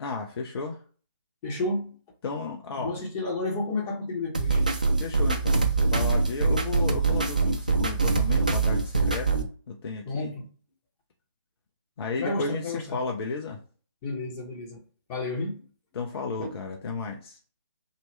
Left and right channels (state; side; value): inverted; both; correlation -0.68